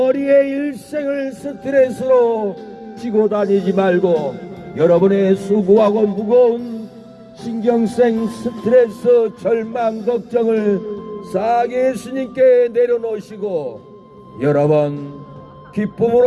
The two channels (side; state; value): both; identical; correlation 1.00